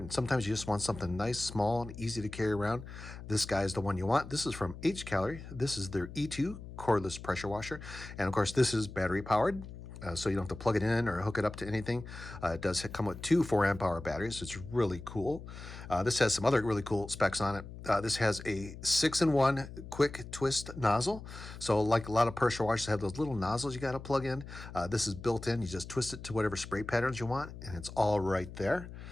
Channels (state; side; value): noise; left; hum, 12 dB below the sound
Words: sometimes you just want something nice, small, and easy to carry around. This guy is the one you want. This is from Hcalory. This is their E2 cordless pressure washer, and of course this is battery powered. So you don't have to plug it in or hook it up to anything. It does come with two 4-amp-hour batteries. It's really cool. This has some other really cool specs on it. This has a 6-in-1 quick twist nozzle. So like a lot of pressure washers have those little nozzles you got to plug in. This is built in. You just twist it to whatever spray patterns you want, and it's all right there.